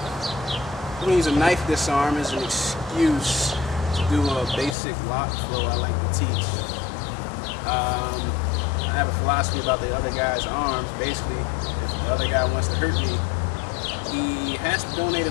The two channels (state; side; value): drops out; right; at 4.8 s